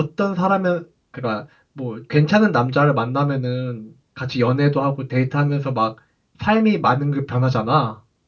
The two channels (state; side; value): identical; both; correlation 1.00